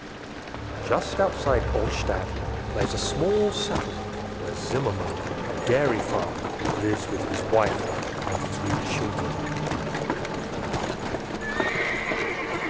Just outside Olstadt lies a small settlement where Zimmerman, a dairy farmer, lives with his wife and 3 children.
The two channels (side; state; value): both; identical; correlation 1.00